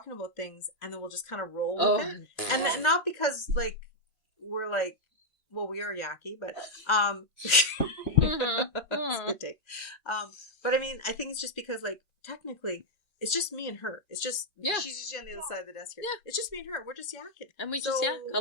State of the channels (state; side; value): late; right; 1.4 ms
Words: about things, and then we'll just kind of roll with it, and not because like we're like, well, we are yucky, but that's a good take. But I mean, I think it's just because like technically. It's just me and her. It's just she's usually on the other side of the desk here. Yeah. It's just me and her. We're just yakking, and we just